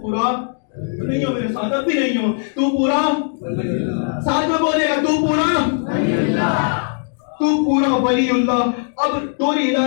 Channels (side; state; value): right; silent; digital silence